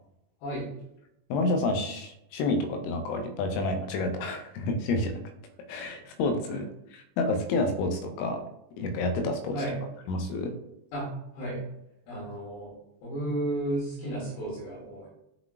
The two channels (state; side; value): late; right; 21 ms